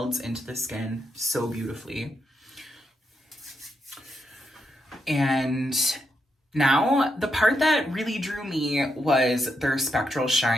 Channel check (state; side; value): normal; both; correlation 0.82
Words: into the skin so beautifully. And now, the part that really drew me was their Spectral